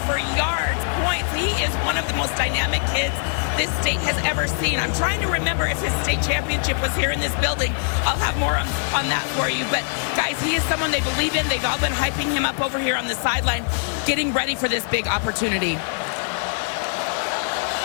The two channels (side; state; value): right; silent; 64 dB below the other